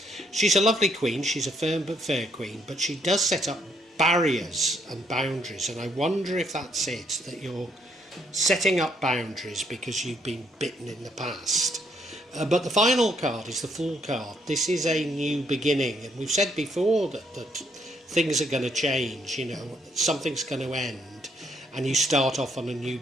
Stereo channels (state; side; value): normal; both; correlation 0.71